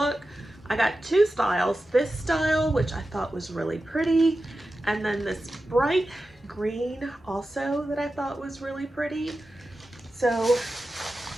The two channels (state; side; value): normal; both; correlation 0.92